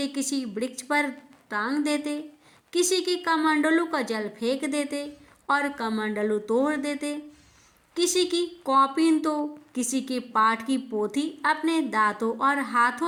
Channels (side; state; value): both; identical; correlation 1.00